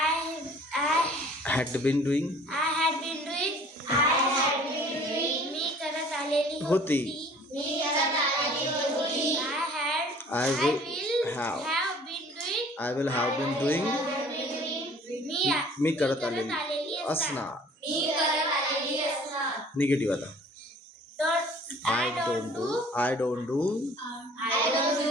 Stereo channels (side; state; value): both; normal; correlation 0.51